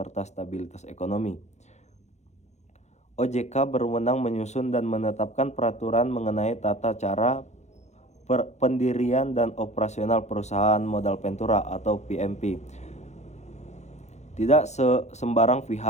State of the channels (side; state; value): right; late; 0.33 ms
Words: stabilitas ekonomi. OJK berwenang menyusun dan menetapkan peraturan mengenai tata cara pendirian dan operasional perusahaan modal ventura atau PMP. Tidak sembarang